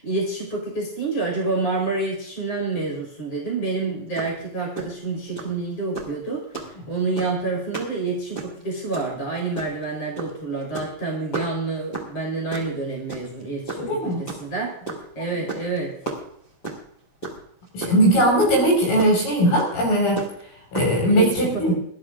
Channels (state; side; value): late; right; 16 ms